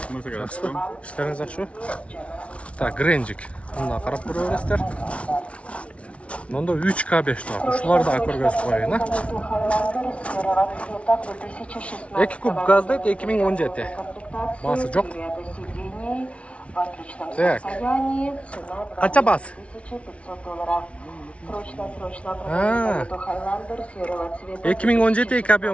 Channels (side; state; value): right; late; 0.062 ms